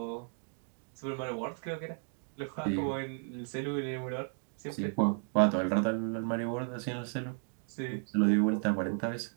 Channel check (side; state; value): left; silent; 55 dB below the other